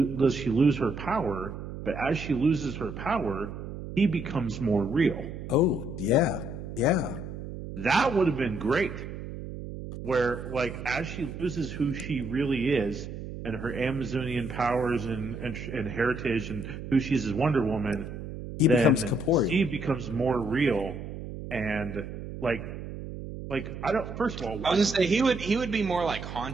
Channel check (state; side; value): noise; right; hum, 9 dB below the sound